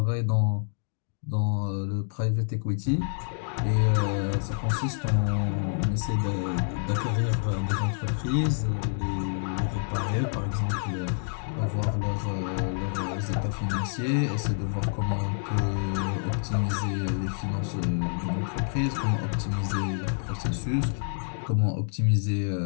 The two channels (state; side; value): silent; right; digital silence